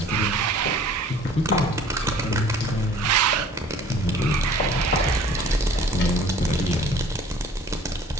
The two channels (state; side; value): normal; both; correlation 0.51